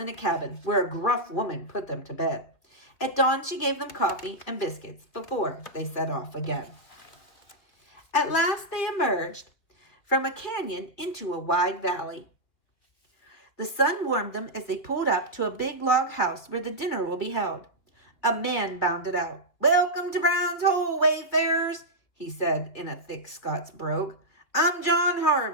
in a cabin where a gruff woman put them to bed. At dawn, she gave them coffee and biscuits before they set off again. At last, they emerged from a canyon into a wide valley. The sun warmed them as they pulled up to a big log house where the dinner will be held. A man bounded out. "Welcome to Brown's Hole, wayfarers," he said in a thick Scots brogue. "I'm John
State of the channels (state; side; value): late; right; 2.7 ms